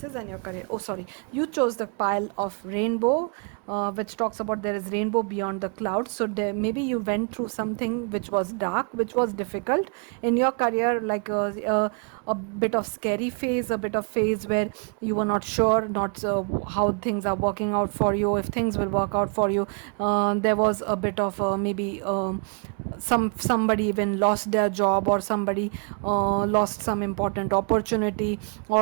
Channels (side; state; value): left; quieter; 37.1 dB